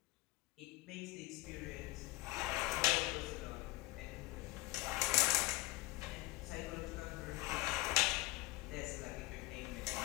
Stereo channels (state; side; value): quieter; right; 19.4 dB